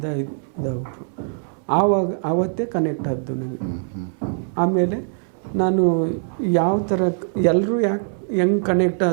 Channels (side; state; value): left; silent; digital silence